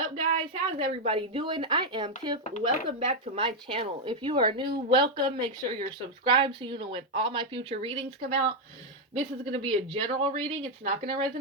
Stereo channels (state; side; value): normal; both; correlation 0.02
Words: guys? How's everybody doing? I am Tiff. Welcome back to my channel. If you are new, welcome. Make sure you're subscribed so you know when all my future readings come out. This is going to be a general reading. It's not going to